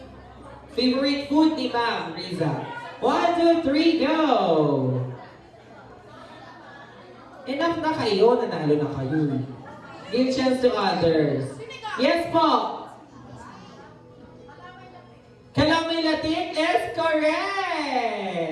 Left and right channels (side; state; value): both; identical; correlation 1.00